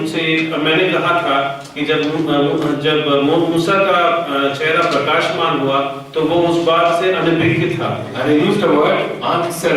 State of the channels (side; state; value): both; identical; correlation 1.00